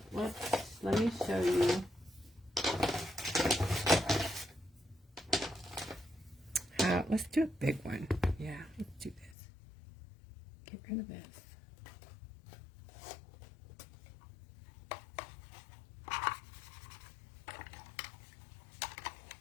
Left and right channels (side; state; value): right; drops out; at 9.3 s